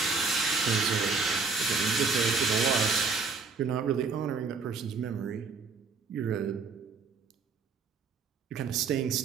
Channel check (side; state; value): left; quieter; 4.8 dB